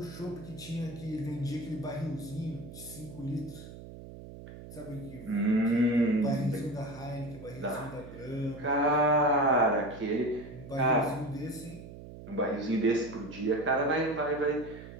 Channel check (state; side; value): noise; right; hum, 14 dB below the sound